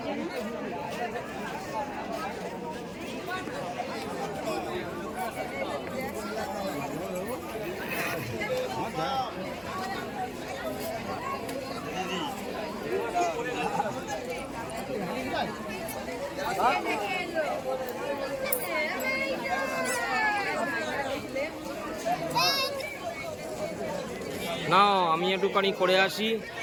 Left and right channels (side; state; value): both; identical; correlation 1.00